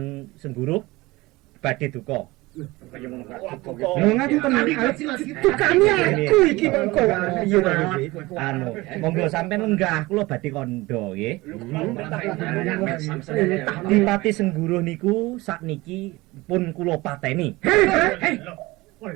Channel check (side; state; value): left; quieter; 21.0 dB